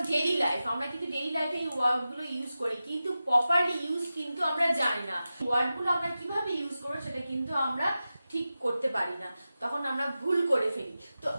daily life, আমরা কিন্তু ডেইলি লাইফে এই ওয়ার্ডগুলো ইউজ করি কিন্তু প্রপারলি ইউজ কিন্তু আমরা জানি না। ওয়ার্ডগুলো আমরা কিভাবে ইউজ করব সেটা কিন্তু আমরা ঠিক করতে পারি না, তখন আমরা ভুল করে ফেলি। তো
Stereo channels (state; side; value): inverted; both; correlation -0.93